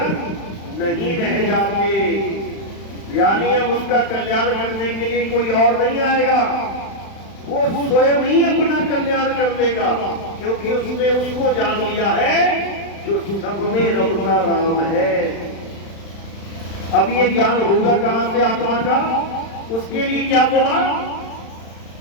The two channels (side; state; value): right; late; 35 ms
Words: नहीं रह जाते। यानी अब उसका कल्याण करने के लिए कोई और नहीं आएगा, वो स्वयं ही अपना कल्याण कर देगा, क्योंकि उसने उसको जान लिया है जो सब में रमता राम है। अब ये ज्ञान होगा कहां से? आत्मा का। उसके लिए क्या बोला?